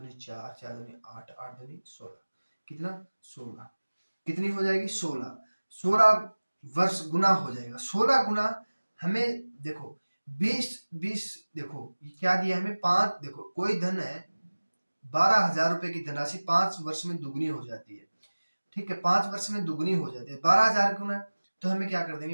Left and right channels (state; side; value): inverted; both; correlation -1.00